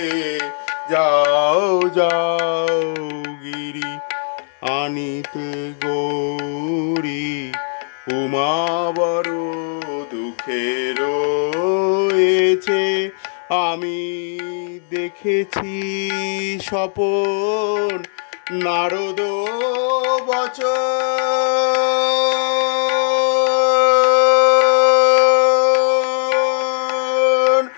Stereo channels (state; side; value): silent; right; digital silence